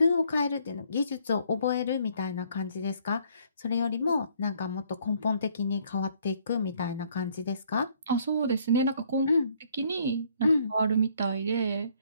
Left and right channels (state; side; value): inverted; both; correlation -0.64